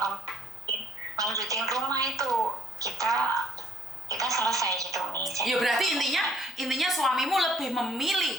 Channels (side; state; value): both; normal; correlation 0.62